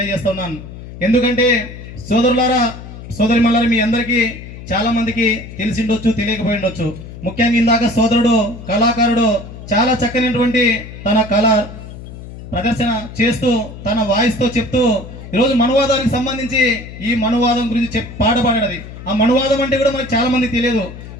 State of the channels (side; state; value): left; noise; hum, 13 dB below the sound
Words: ఎందుకంటే సోదరులారా సోదరిమల్లారా, మీ అందరికీ చాలా మందికి తెలిసిండొచ్చు, తెలియకపోయి ఉండొచ్చు. ముఖ్యంగా ఇందాక సోదరుడు కళాకారుడు చాలా చక్కనటువంటి తన కళ ప్రదర్శన చేస్తూ తన వాయిస్తో చెప్తూ ఈరోజు మనువాదానికి సంబంధించి ఈ మనువాదం గురించి పాట పాడేది. ఆ మనువాదం అంటే కూడా మనకు చాలా మంది తెలియదు.